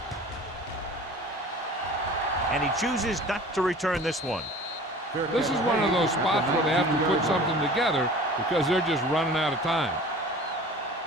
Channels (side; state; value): both; normal; correlation 0.43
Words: And he chooses not to return this one. This is one of those spots where they have to put something together because they're just running out of time.